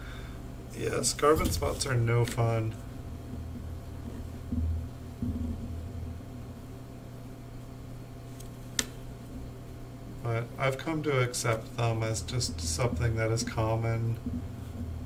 Yes, carbon spots are no fun. But I've come to accept them as just something that is common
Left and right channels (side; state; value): both; identical; correlation 1.00